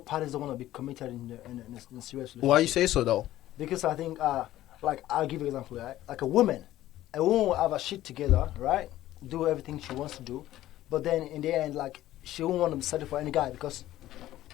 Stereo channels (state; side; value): quieter; right; 14.3 dB